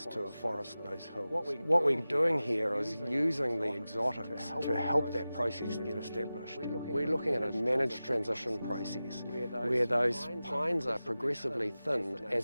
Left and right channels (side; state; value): both; inverted; correlation -0.95